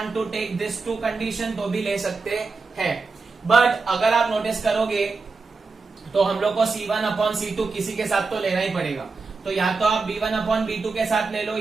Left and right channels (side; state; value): left; quieter; 4.2 dB